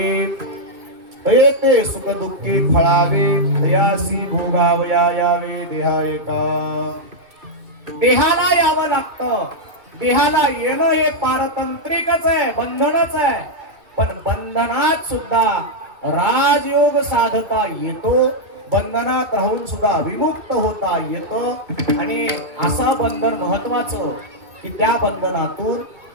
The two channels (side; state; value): left; late; 2.3 ms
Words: येते सुख दुःखी फळावे दयासी भोगावया यावे देहा एका. देहाला यावं लागतं. देहाला येणं हे पारतंत्रिकच आहे, बंधनच आहे. पण बंधनात सुद्धा राजयोग साधता येतो, बंधनात राहून सुद्धा विमुक्त होता येतं. आणि असा बंधन महत्वाचं की त्या बंधनातून